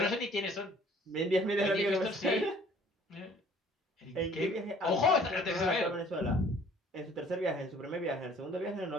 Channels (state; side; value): normal; both; correlation 0.55